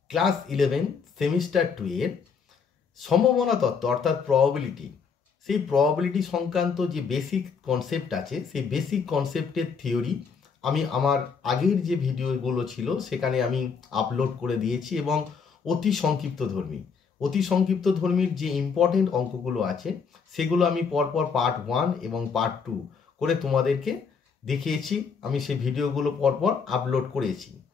class 11 semester 2 এর সম্ভাবনা তত্ত্ব অর্থাৎ প্রবাবিলিটি, সেই প্রবাবিলিটি সংক্রান্ত যে বেসিক কনসেপ্ট আছে সেই বেসিক কনসেপ্টের থিওরি আমি আমার আগের যে ভিডিওগুলো ছিল সেখানে আমি আপলোড করে দিয়েছি এবং অতি সংক্ষিপ্ত ধর্মীর যে ইম্পর্টেন্ট অঙ্কগুলো আছে সেগুলো আমি পরপর পার্ট 1 এবং পার্ট 2 করে তোমাদেরকে দেখিয়েছি। আমি সেই ভিডিওগুলো পরপর আপলোড করেছি।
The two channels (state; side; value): quieter; right; 5.8 dB